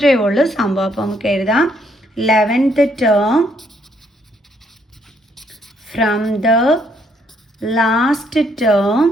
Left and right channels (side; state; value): both; normal; correlation 0.71